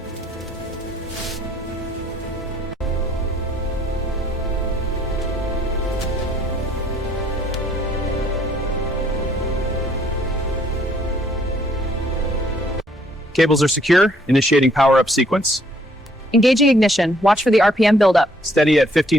Cables are secure, initiating power-up sequence. Engaging ignition. Watch for the RPM buildup. Steady at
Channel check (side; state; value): both; normal; correlation 0.65